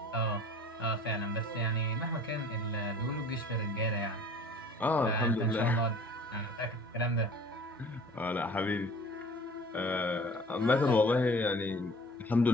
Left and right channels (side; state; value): both; normal; correlation 0.48